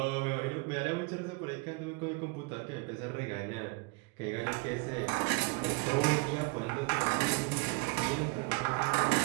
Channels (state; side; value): quieter; left; 27.1 dB